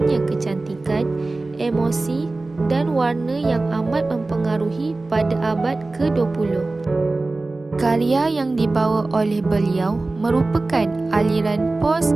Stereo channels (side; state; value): left; quieter; 3.2 dB